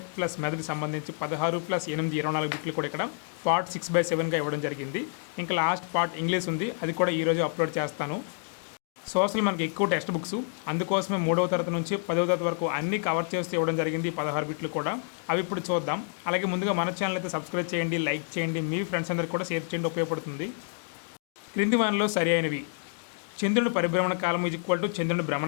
plus method సంబంధించి 16+8 24 బిట్లు కూడా ఇక్కడ పార్ట్ 6/7గా ఇవ్వడం జరిగింది. ఇంకా లాస్ట్ పార్ట్ ఇంగ్లీష్ ఉంది, అది కూడా ఈరోజు అప్లోడ్ చేస్తాను. సోషల్ మనకి ఎక్కువ టెక్స్ట్ బుక్స్, అందుకోసమే 3వ తరగతి నుంచి 10వ తరగతి వరకు అన్నీ కవర్ చేస్తూ ఇవ్వడం జరిగింది. 16 బిట్లు కూడా అవి ఇప్పుడు చూద్దాం. అలాగే ముందుగా మన ఛానల్ అయితే సబ్స్క్రైబ్ చేయండి, లైక్ చేయండి, మీ ఫ్రెండ్స్ అందరికీ కూడా షేర్ చేయండి, ఉపయోగపడుతుంది. క్రింది వానిలో సరి అయినవి: చంద్రుని పరిభ్రమణ కాలము = చంద్రుని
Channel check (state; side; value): silent; right; 59 dB below the other